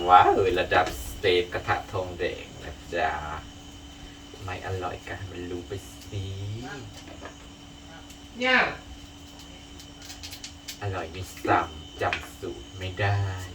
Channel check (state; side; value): identical; both; correlation 1.00